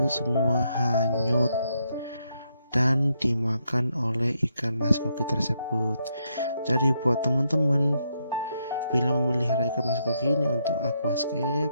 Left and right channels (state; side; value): inverted; both; correlation -0.78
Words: semua hanyut dan dimakan oleh ikan mas koki tersebut. Jadi buat teman-teman, bila memelihara ikan mas koki ini untuk aquascape,